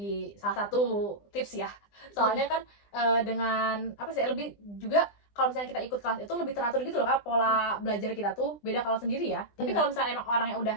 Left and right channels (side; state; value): right; late; 20 ms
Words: salah satu tips ya, soalnya kan dengan apa sih lebih juga kalau misalnya kita ikut kelas itu lebih teratur gitu loh kak, pola belajar kita tuh beda kalau sendiri ya. Tapi kalau misalnya emang orang yang udah